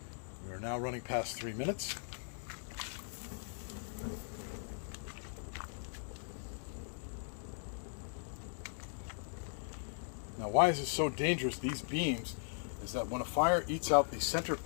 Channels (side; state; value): right; silent; digital silence